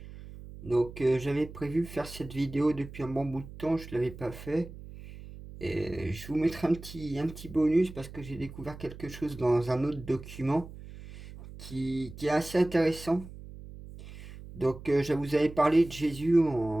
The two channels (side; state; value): right; noise; hum, 15 dB below the sound